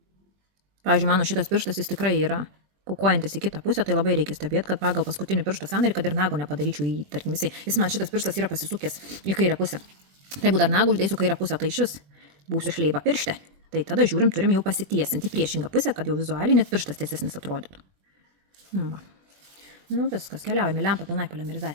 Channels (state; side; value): late; left; 21 ms